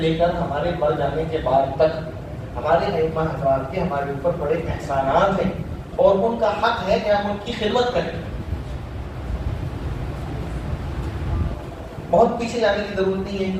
کر ہمارے مر جانے کے بعد تک ہمارے ائمہ حضرات کے ہمارے اوپر بڑے احسانات ہیں اور ان کا حق ہے کہ ہم ان کی خدمت کریں. بہت پیچھے جانے کی ضرورت نہیں ہے،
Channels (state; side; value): identical; both; correlation 1.00